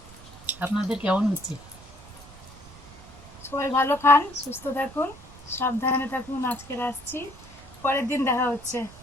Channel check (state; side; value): noise; right; rumble, 19 dB below the sound